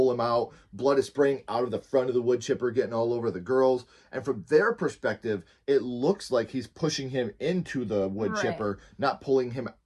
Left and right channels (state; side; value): identical; both; correlation 1.00